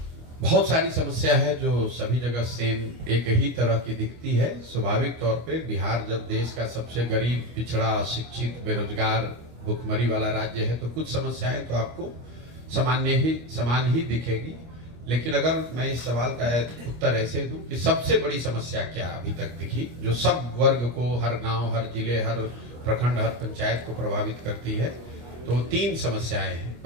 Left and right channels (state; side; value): late; left; 25 ms